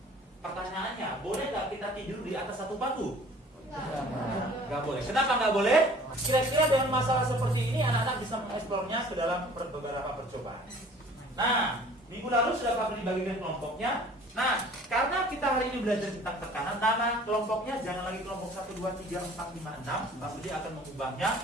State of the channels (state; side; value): normal; both; correlation 0.50